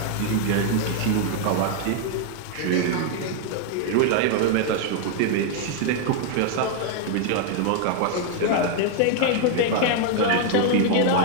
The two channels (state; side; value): different; both; correlation 0.00